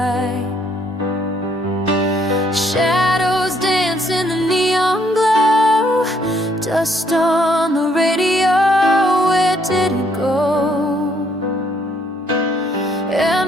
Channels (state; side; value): normal; both; correlation 0.68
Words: Shadows dance in the neon glow. Dust on the radio, where did it go?